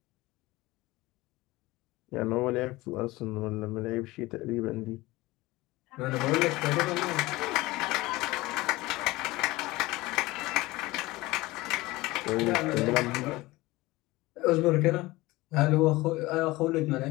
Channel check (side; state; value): right; quieter; 20.0 dB